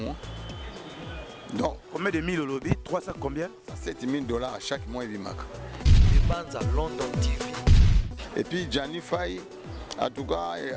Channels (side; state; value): both; identical; correlation 1.00